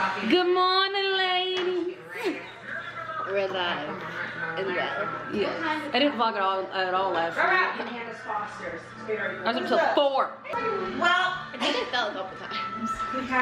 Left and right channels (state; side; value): identical; both; correlation 1.00